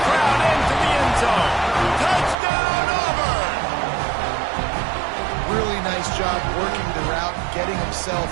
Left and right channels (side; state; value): left; drops out; at 2.4 s